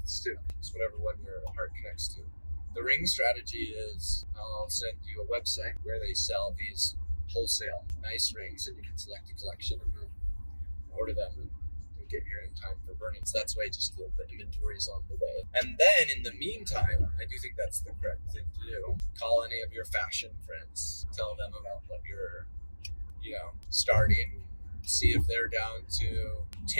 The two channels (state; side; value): inverted; both; correlation -1.00